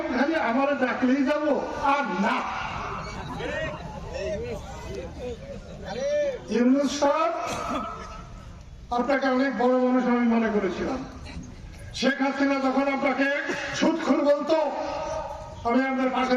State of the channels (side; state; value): both; identical; correlation 1.00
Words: খালি আমার ডাকলেই যাবো আর না। ইউনূস সাহেব, আপনাকে অনেক বড় মানুষ আমি মনে করেছিলাম। শেখ হাসিনা যখন আপনাকে সুদখোর বলতো, আমি আপনার পাশে